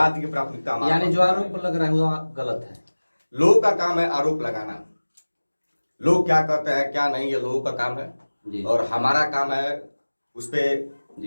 की प्राथमिकता, यानी जो आरोप लग रहा है वो गलत है। लोगों का काम है आरोप लगाना। लोग क्या कहते हैं क्या नहीं, ये लोगों का काम है। और हमारा काम है उस पे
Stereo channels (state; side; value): inverted; both; correlation -1.00